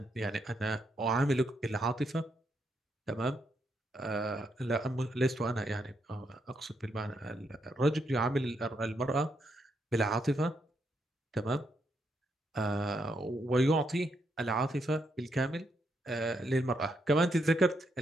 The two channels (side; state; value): both; normal; correlation 0.78